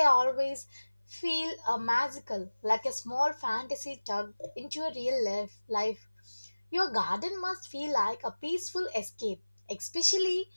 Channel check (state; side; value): inverted; both; correlation -1.00